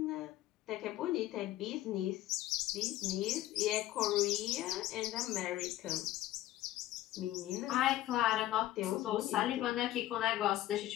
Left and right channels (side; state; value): right; quieter; 14.9 dB